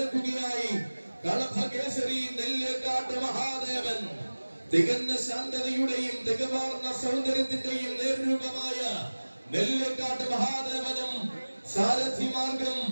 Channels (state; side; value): inverted; both; correlation -1.00